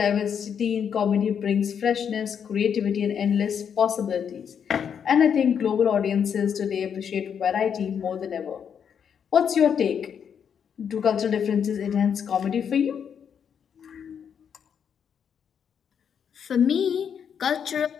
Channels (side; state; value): right; quieter; 7.7 dB